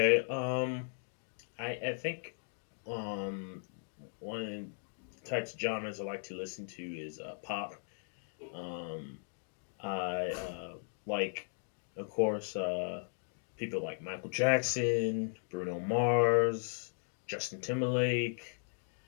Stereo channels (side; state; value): right; silent; digital silence